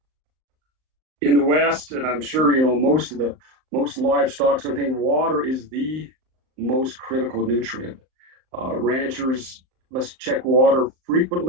In the West, and I'm sure most livestock, so I think water is the most critical nutrient. Ranchers must check water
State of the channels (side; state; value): left; late; 38 ms